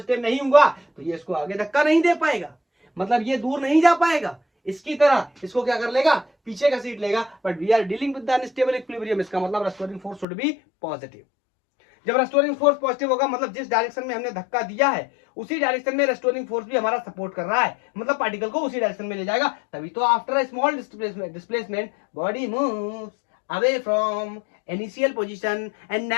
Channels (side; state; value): right; drops out; at 10.2 s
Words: नहीं हुआ तो ये इसको आगे धक्का नहीं दे पाएगा, मतलब ये दूर नहीं जा पाएगा, इसकी तरह इसको क्या कर लेगा? पीछे का सीट लेगा। But we are dealing with the unstable equilibrium, इसका मतलब restoring force should be positive. जब रेस्टोरिंग फोर्स पॉजिटिव होगा मतलब जिस डायरेक्शन में हमने धक्का दिया है उसी डायरेक्शन में रेस्टोरिंग फोर्स भी हमारा सपोर्ट कर रहा है, मतलब पार्टिकल को उसी डायरेक्शन में ले जाएगा। तभी तो after a small displacement body moves away from initial position and